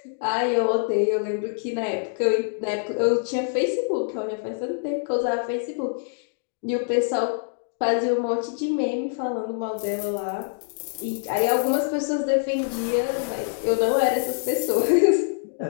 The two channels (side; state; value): right; silent; digital silence